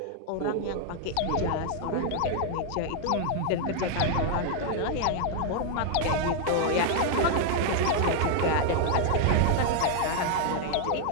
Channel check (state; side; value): different; both; correlation 0.00